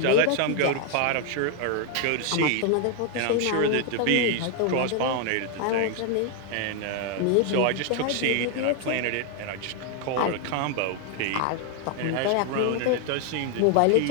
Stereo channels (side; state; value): both; different; correlation 0.00